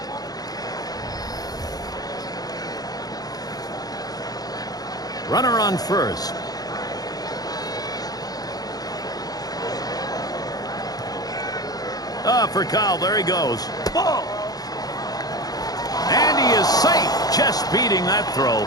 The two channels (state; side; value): late; right; 0.18 ms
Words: Runner on first. For Kyle, there he goes. Ball. And he is safe, just beating that throw.